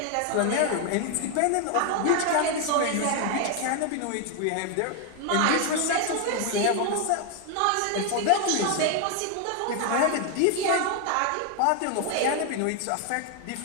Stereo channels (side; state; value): both; different; correlation 0.00